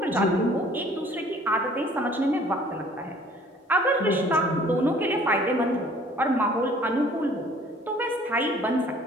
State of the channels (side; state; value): both; normal; correlation 0.54